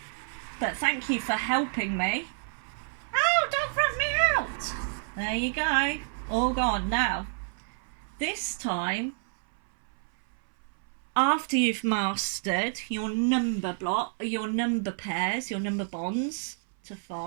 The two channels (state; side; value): silent; left; 59 dB below the other